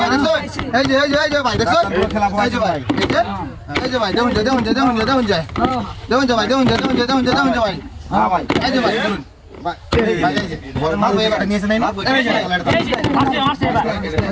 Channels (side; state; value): both; identical; correlation 1.00